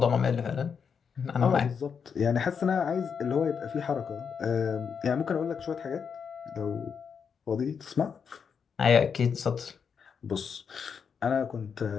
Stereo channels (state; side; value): quieter; right; 6.5 dB